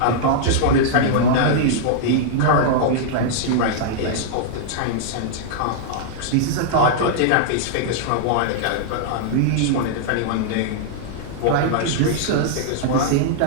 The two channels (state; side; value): different; both; correlation -0.01